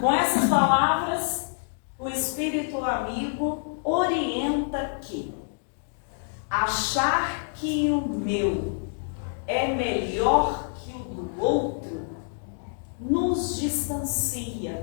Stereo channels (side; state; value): right; silent; digital silence